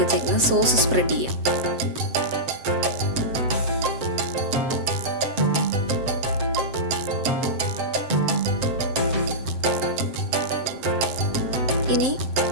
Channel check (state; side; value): late; left; 7.7 ms